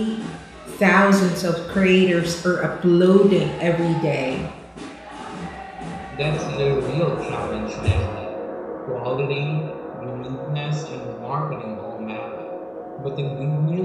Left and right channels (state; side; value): identical; both; correlation 1.00